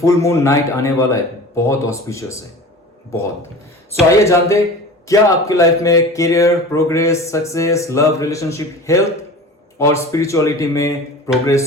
मून नाइट आने वाला है, बहुत ऑस्पिशियस है, बहुत। सो आइए जानते हैं क्या आपकी लाइफ में career, progress, success, love, relationship, health और स्पिरिचुअलिटी में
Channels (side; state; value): both; normal; correlation 0.37